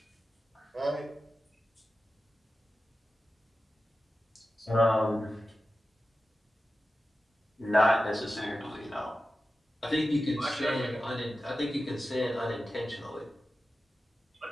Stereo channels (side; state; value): both; normal; correlation 0.93